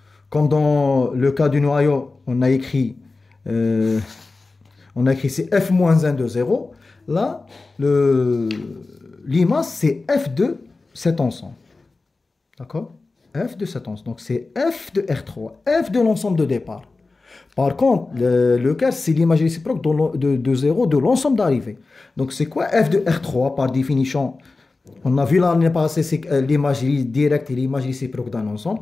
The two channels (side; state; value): right; quieter; 3.6 dB